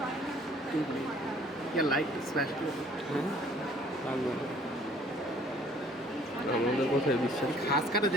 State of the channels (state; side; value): normal; both; correlation 0.57